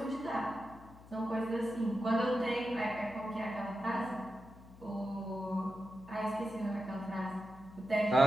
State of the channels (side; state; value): left; noise; hum, 20 dB below the sound